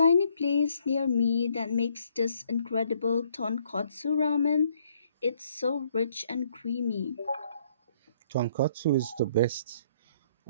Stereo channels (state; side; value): inverted; both; correlation -0.68